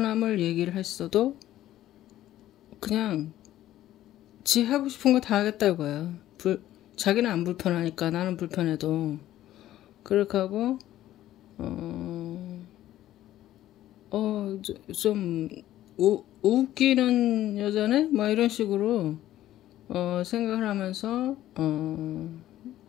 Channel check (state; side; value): quieter; right; 13.5 dB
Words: 얘기를 했어도 그냥 지 하고 싶은 거 다 하겠다 이거야. 자기는 안 불편하니까 나는 불편해도 그렇게 하고 좀 웃기는 여자네? 막 이런 식으로 생각을 하면서